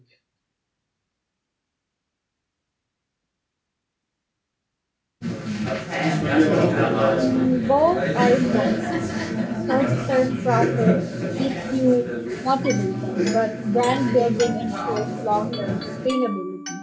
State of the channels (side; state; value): both; identical; correlation 1.00